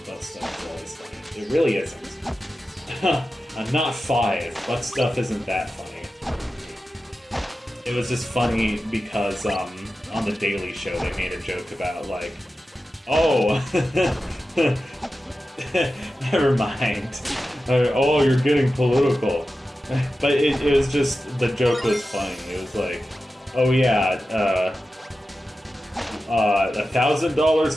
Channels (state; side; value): normal; both; correlation 0.93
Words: is always funny. It really isn't. I'm not 5, but stuff isn't that funny. It was just funny because on the Daily Show they made a joke about like, oh, never mind. Oh, you're getting political. But it was just, the joke was funny. It was like, oh yeah,